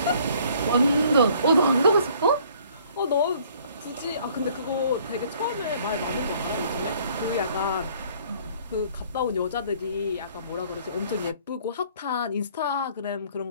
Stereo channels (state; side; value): inverted; both; correlation -0.58